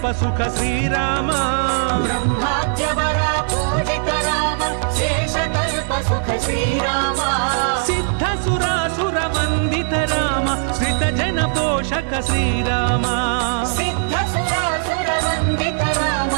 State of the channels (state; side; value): silent; left; digital silence